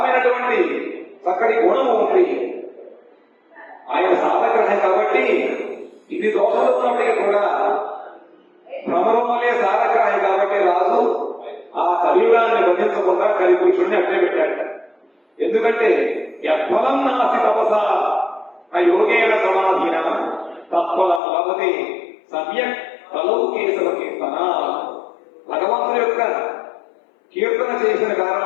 చక్కటి గుణము ఉంది. ఆయన సాధగ్రహం కాబట్టి ఇది దోషాలు ఉన్నప్పటికీ కూడా భ్రమరం వల్లే సాధగ్రహం కాబట్టి రాజు ఆ కలియుగాన్ని బంధించకుండా కలిపురుషుడిని అట్టే పెట్టాడు. ఎందుకంటే యత్ఫలం నాసి తపస యోగేన సమాధీన తత్ఫలం లభతే సమ్యక్ తలౌ కేశవ కీర్తన. భగవంతుడి యొక్క కీర్తన చేసిన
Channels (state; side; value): drops out; right; at 21.2 s